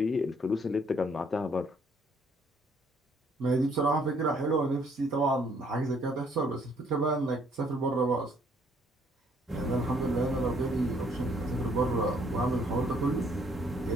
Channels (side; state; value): both; normal; correlation 0.65